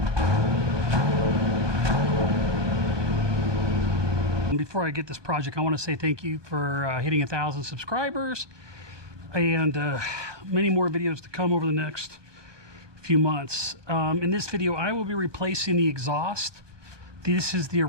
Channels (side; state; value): left; late; 1.2 ms